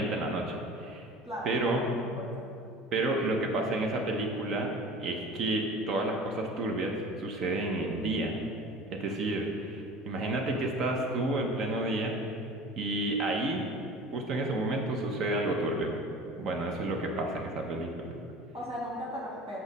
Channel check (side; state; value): both; normal; correlation 0.40